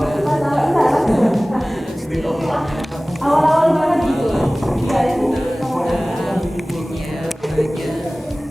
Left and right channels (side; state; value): both; normal; correlation 0.98